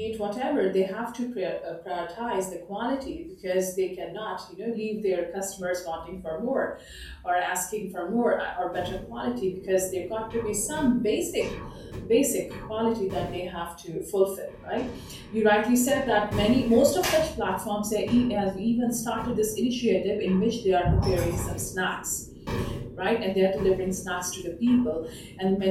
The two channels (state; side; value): identical; both; correlation 1.00